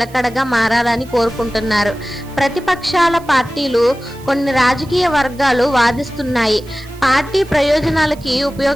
మారాలని కోరుకుంటున్నారు. ప్రతిపక్షాల పార్టీలు, కొన్ని రాజకీయ వర్గాలు వాదిస్తున్నాయి, పార్టీ ప్రయోజనాలకి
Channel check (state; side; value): noise; right; hiss, 24 dB below the sound